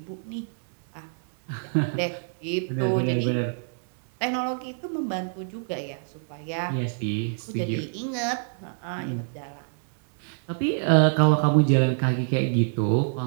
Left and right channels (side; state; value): left; silent; 61 dB below the other